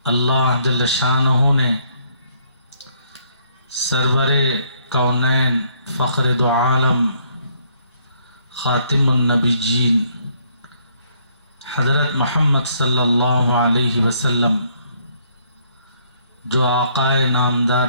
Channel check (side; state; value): both; inverted; correlation -0.67